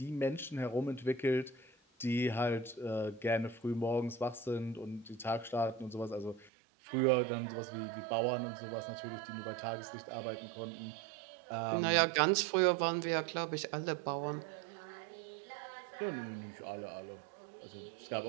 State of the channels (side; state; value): left; drops out; at 6.5 s